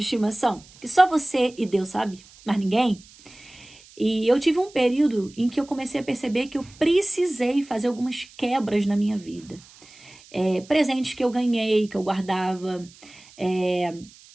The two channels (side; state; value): right; noise; hiss, 24 dB below the sound